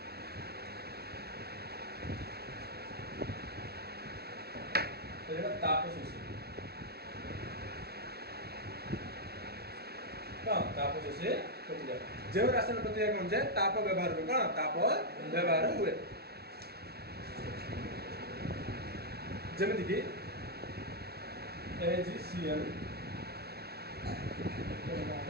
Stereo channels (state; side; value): late; left; 0.46 ms